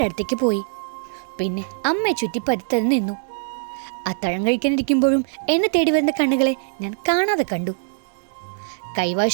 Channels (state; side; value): silent; left; digital silence